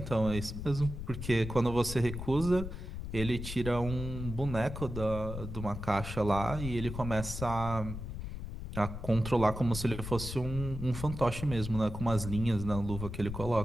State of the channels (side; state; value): left; noise; rumble, 7 dB below the sound